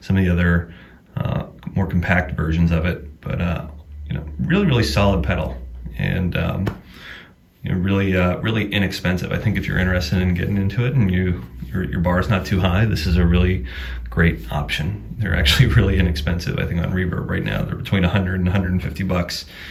some of the other more compact versions of it, but you know, really solid pedal, and you know, really inexpensive. I think if you're interested in getting into it and your bar is not too high, this is a really great option. They're actually really inexpensive. I think on Reverb right now they're between 100 and 150 bucks,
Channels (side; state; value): both; identical; correlation 1.00